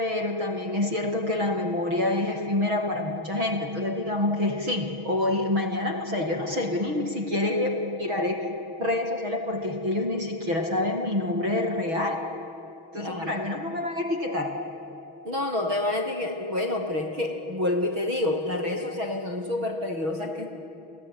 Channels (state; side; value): late; left; 6.2 ms